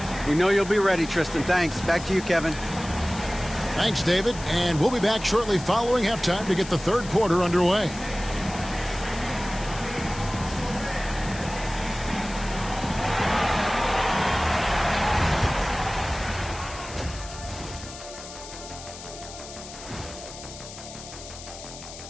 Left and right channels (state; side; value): noise; left; hiss, 14 dB below the sound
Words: We know you'll be ready, Tristan. Thanks. Back to you, Kevin. Thanks, David. And we'll be back shortly following halftime to get the third quarter underway.